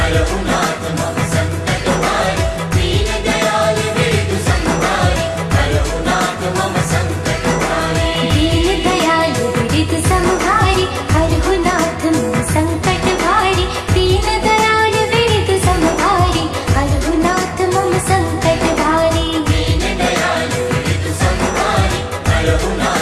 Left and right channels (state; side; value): identical; both; correlation 1.00